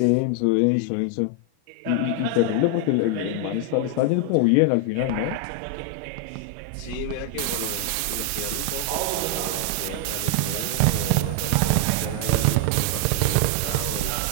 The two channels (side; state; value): both; different; correlation 0.00